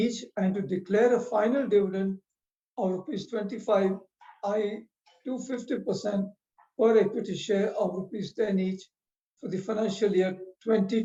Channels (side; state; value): both; identical; correlation 1.00